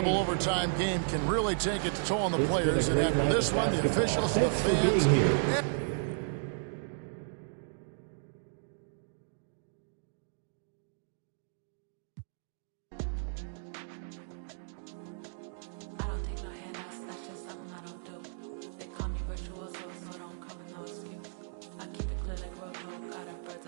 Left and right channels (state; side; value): silent; left; digital silence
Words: overtime game can really take its toll on the players. And after this one, the officials, the fans...